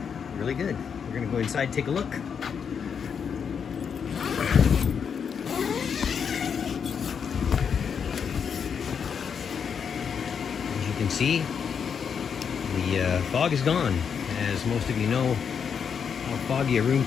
really good. We're gonna go inside and take a look. As you can see, the fog is gone. As most of you know how foggy a room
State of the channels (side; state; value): right; quieter; 6.9 dB